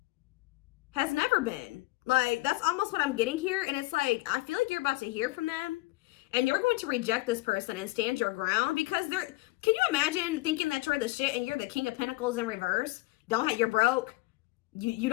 has never been. Like, that's almost what I'm getting here. And it's like, I feel like you're about to hear from them. And you're going to reject this person and stand your ground. Because they're, can you imagine thinking that you're the shit and you're the King of Pentacles in reverse? You're broke. You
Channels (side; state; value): right; quieter; 21.0 dB